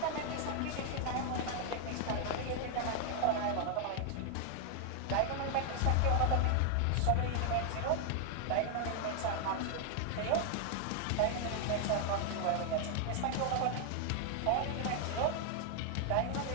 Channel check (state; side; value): different; both; correlation 0.00